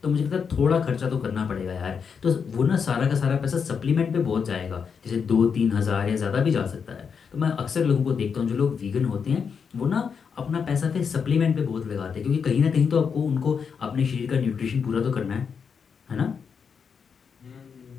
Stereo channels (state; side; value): quieter; right; 6.3 dB